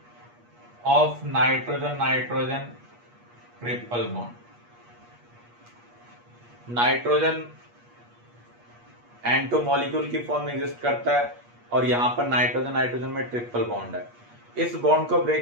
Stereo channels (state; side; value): late; left; 8.4 ms